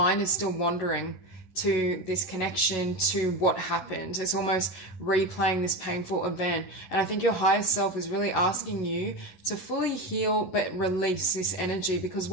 is still wandering to this connection, to what happened. It's almost replaying this painful event. And I think your higher self is really asking you to fully heal but release this energy, because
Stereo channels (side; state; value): right; late; 11 ms